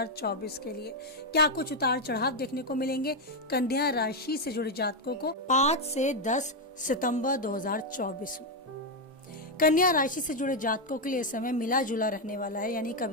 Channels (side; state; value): both; normal; correlation 0.04